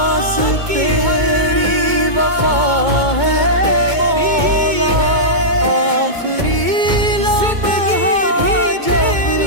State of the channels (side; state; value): left; late; 2.2 ms